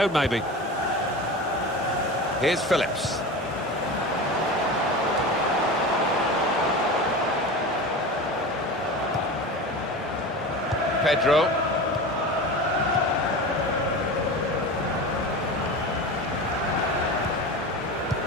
maybe. Here's Phillips. Pedro.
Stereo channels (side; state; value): both; normal; correlation 0.29